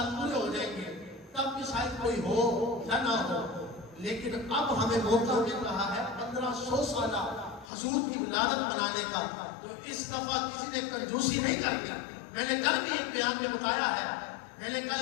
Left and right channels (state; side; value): drops out; right; at 7.7 s